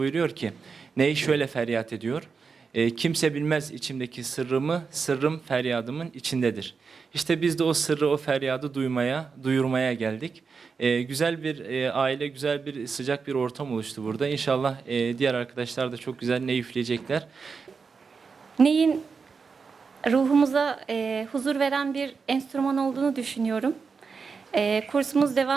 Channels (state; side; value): quieter; left; 5.2 dB